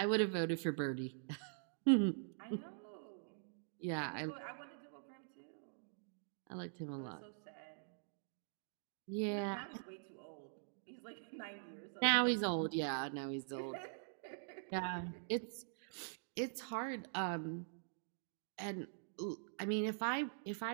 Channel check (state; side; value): silent; left; digital silence